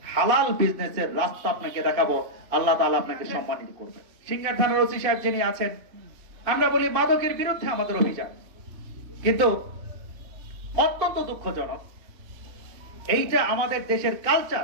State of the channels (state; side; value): late; left; 2.6 ms